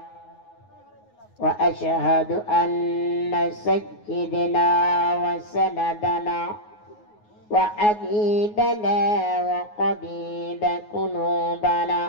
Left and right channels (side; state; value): right; late; 9.5 ms